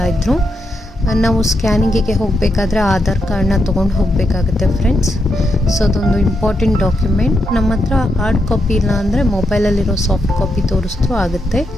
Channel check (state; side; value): normal; both; correlation 0.82